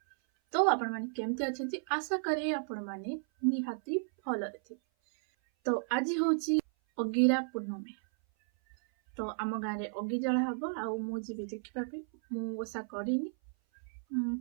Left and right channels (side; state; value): left; silent; 55 dB below the other